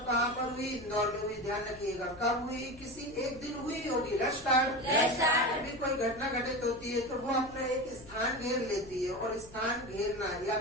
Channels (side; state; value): left; noise; hum, 21 dB below the sound